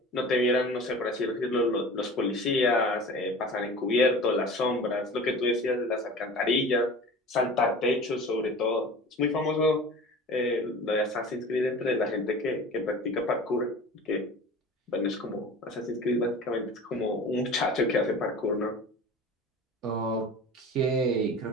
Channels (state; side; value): normal; both; correlation 0.38